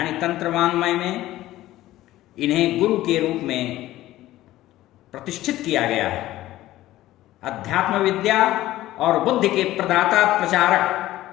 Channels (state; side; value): quieter; right; 15.4 dB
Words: तंत्र वाङ्मय में इन्हें गुरु के रूप में प्रतिष्ठित किया गया है। अध्यात्म विद्या और बुद्धि के प्रदाता प्रचारक